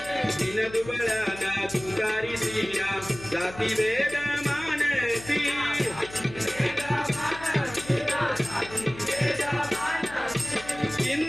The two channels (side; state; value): left; noise; hum, 16 dB below the sound